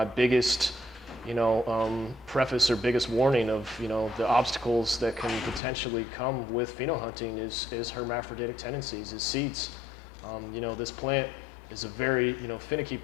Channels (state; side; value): drops out; right; at 5.6 s